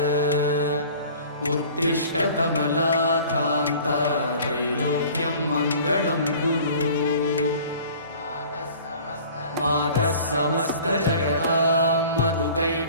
उत्तिष्ठ कमलाकान्त त्रैलोक्यं मङ्गलं कुरु मातः समस्तजगतां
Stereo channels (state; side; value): inverted; both; correlation -0.46